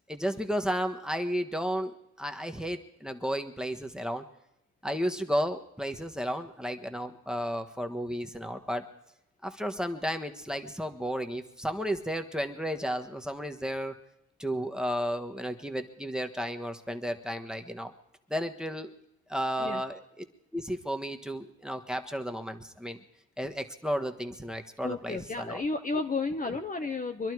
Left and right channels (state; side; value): normal; both; correlation 0.83